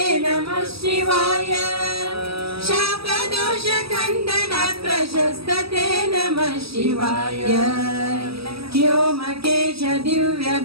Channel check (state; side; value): late; left; 0.77 ms